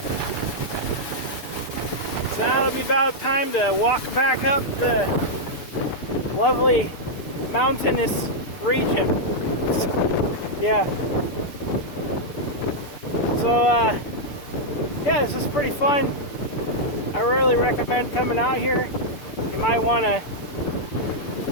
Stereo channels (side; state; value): right; late; 6.9 ms